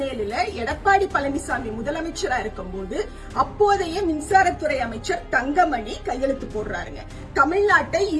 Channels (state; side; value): identical; both; correlation 1.00